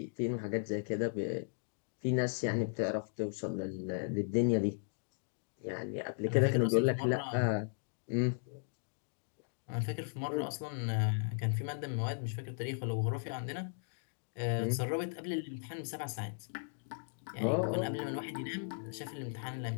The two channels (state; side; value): silent; right; digital silence